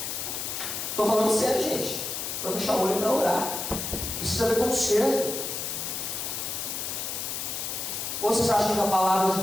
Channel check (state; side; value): noise; left; hiss, 4 dB below the sound